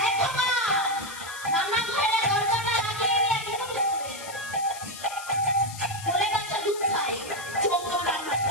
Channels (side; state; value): left; noise; hiss, 13 dB below the sound